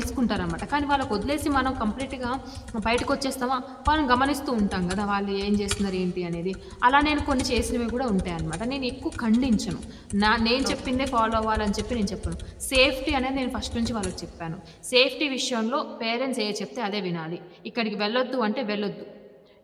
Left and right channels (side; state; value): both; identical; correlation 1.00